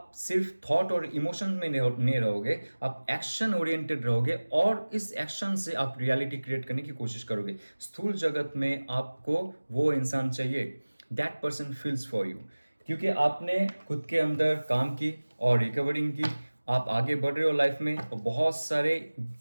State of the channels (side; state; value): both; inverted; correlation -1.00